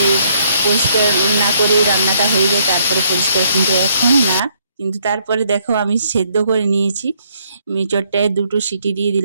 পরিষ্কার না করেই রান্নাটা হয়ে যায় তারপরে পরিষ্কার, কিন্তু এখন না। কিন্তু তারপরে দেখো আমি সেদ্ধ করে নিয়েছি, এঁচড়টায় 2টো সিটি দিয়ে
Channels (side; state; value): both; inverted; correlation -0.68